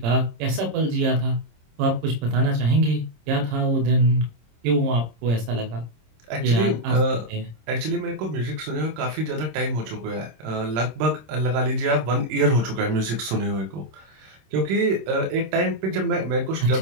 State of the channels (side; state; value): left; late; 26 ms